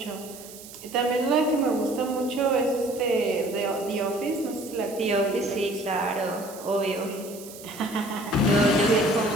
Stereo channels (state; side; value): noise; right; hiss, 16 dB below the sound